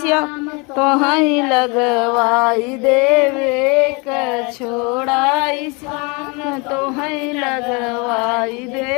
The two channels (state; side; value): quieter; right; 29.9 dB